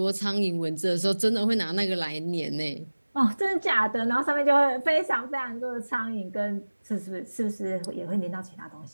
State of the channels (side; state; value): both; inverted; correlation -1.00